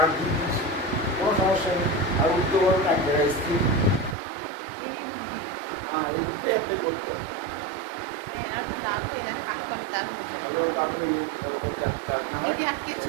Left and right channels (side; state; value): left; drops out; at 4.2 s